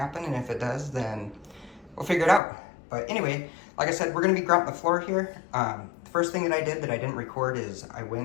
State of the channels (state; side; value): drops out; right; at 2.4 s